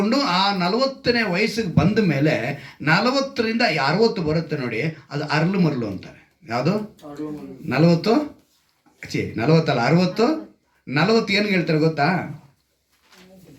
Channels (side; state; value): both; identical; correlation 1.00